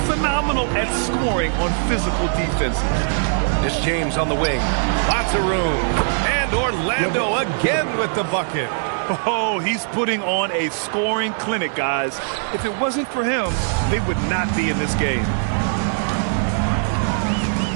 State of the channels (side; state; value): left; silent; digital silence